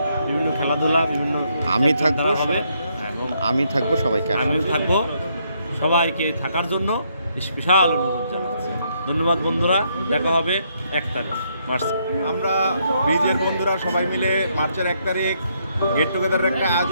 বিভিন্ন খেলাধুলা, বিভিন্ন আমি থাকবো সবাইকে, আমিও থাকবো, সবাইকে থাকার জন্য স্পেশাল অনুরোধ জানাচ্ছি। ধন্যবাদ বন্ধুরা, দেখা হবে 1 তারিখ মার্চ। আমরা ব্রিজের বন্ধুরা সবাই মিলে মার্চের 1 তারিখ গেট টুগেদারের একটা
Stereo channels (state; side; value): inverted; both; correlation -0.74